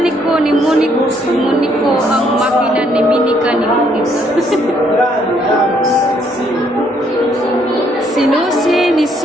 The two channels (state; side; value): normal; both; correlation 0.69